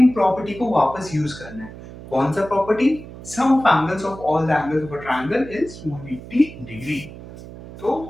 प्रॉपर्टी को वापस यूज करना है। कौन सा property? Sum of angles of all the angles of a triangle is 180 degree. तो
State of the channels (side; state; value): right; noise; hum, 15 dB below the sound